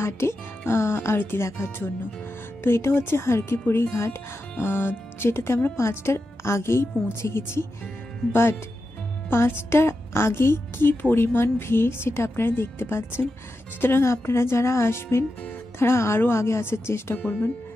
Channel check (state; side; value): normal; both; correlation 0.89